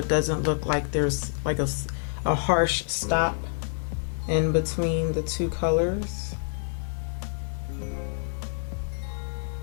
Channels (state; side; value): silent; right; 60 dB below the other